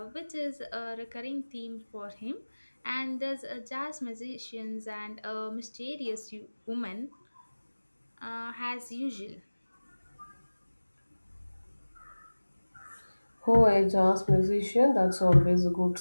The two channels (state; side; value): inverted; both; correlation -1.00